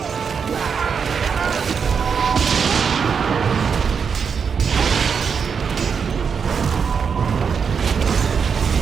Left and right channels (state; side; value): quieter; left; 6.3 dB